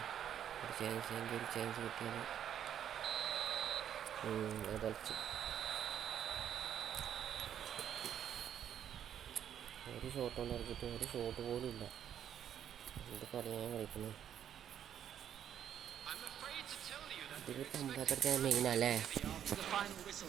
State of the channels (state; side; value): quieter; left; 9.7 dB